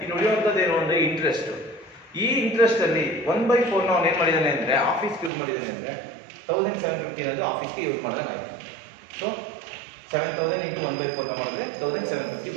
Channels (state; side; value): drops out; left; at 5.3 s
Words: ಇನ್ನು ಉಳಿಯುವಂಥದ್ದು ಏನು ಅಂದರೆ ಇಂಟ್ರೆಸ್ಟ್. ಈ ಇಂಟ್ರೆಸ್ಟಲ್ಲಿ 1/4ನ ಅವನು ಏನು ಮಾಡಿದ್ದಾನೆ ಅಂದರೆ ಆಫೀಸ್ಗೆ ಯೂಸ್ ಮಾಡಿದ್ದಾನೆ ಅಂದರೆ 1750 ಅನ್ನೋದು ಆಫೀಸ್ಗೆ ಯೂಸ್ ಮಾಡಿದಂಗೆ ಆಯಿತು. ಸೊ 7,000 ಇಂಟು 1/4ನ ಮಾಡಿದ್ರೆ 1750